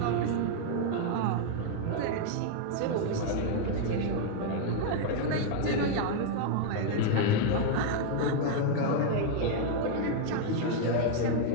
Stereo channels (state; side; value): different; both; correlation 0.00